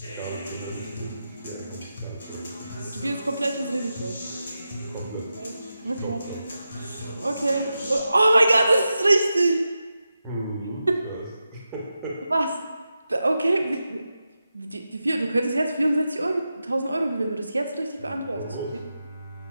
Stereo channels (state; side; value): inverted; both; correlation -0.90